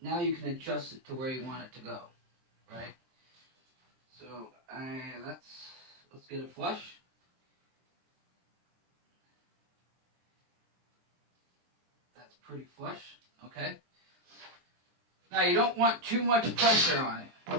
you can adjust it to where you want it to go, right? So, let's get it flush. That's pretty flush, okay? Now, you don't want too much pressure on it.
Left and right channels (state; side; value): late; left; 23 ms